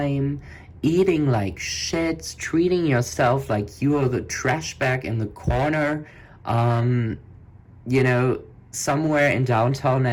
eating like shit, treating yourself like you are the trash bag in the corner, you know, somewhere in downtown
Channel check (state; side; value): identical; both; correlation 1.00